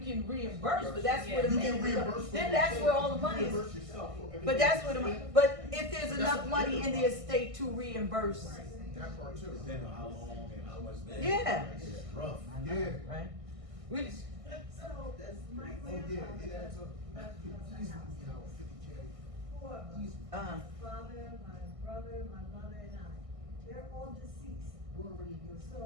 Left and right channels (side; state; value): left; late; 1.6 ms